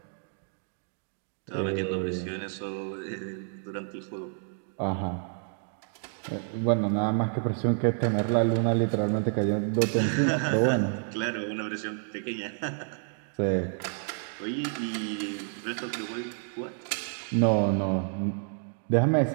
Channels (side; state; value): left; silent; 58 dB below the other